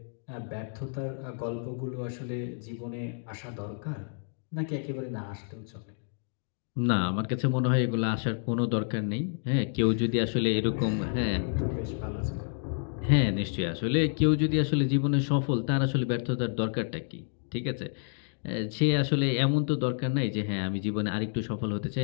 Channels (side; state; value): right; silent; digital silence